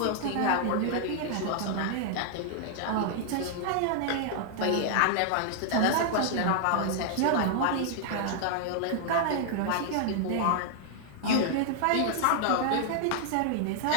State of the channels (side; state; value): both; different; correlation -0.01